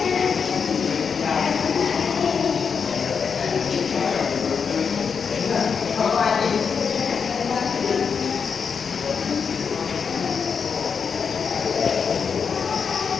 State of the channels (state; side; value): quieter; right; 6.2 dB